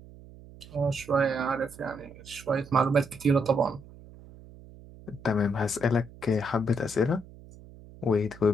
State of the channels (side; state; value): right; noise; hum, 19 dB below the sound